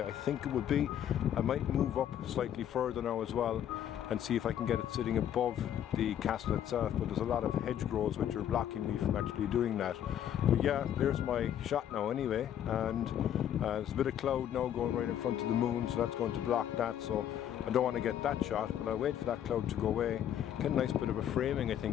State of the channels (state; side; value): quieter; right; 10.3 dB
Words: I think it would be. I might move up slightly further now as well and see if I can get it sitting above the castle itself, but there's a lot of hedgerows which are blocking me from actually doing that. But yeah, there's my shot now anyway, and there's a bit of cloud now going right in front of the moon, so that's going to block that, so I don't want to get that shot, but I'll wait for that cloud to go away. Get a nice bit of a framing, I